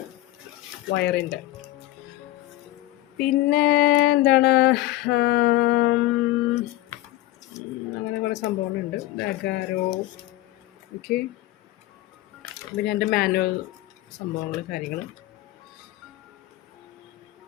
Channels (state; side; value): quieter; right; 16.6 dB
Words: വയറിൻ്റെ. പിന്നെ എന്താണ്, അങ്ങനെ കുറേ സംഭവങ്ങളുണ്ട്. അഗാരോ. ഓക്കെ, പിന്നെ എൻ്റെ മാനുവൽ സംഭവങ്ങൾ, കാര്യങ്ങൾ.